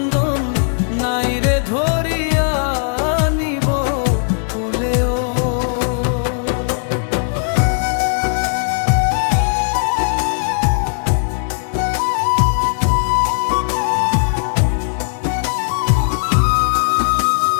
নাই রে ধরিয়া নিব কুলেও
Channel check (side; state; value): right; silent; digital silence